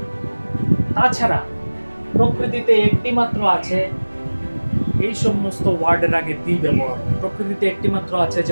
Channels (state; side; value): inverted; both; correlation -1.00